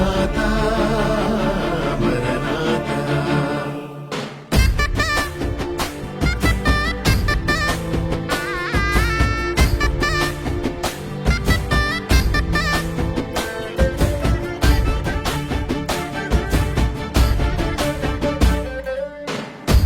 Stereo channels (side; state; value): both; identical; correlation 1.00